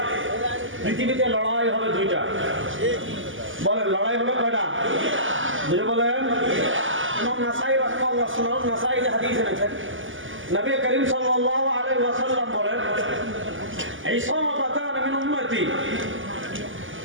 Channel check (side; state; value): left; late; 0.58 ms